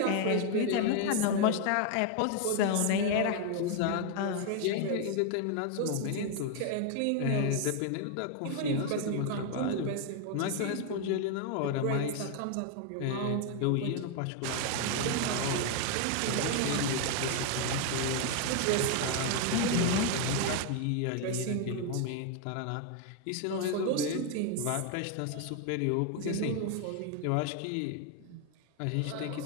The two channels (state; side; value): different; both; correlation 0.01